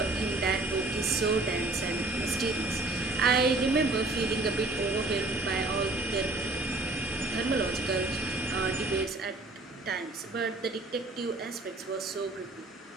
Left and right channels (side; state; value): left; quieter; 3.0 dB